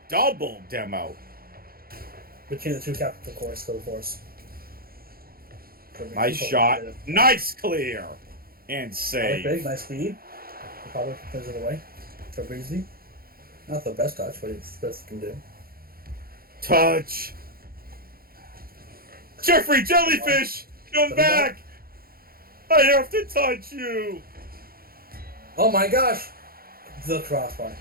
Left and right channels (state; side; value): late; left; 0.43 ms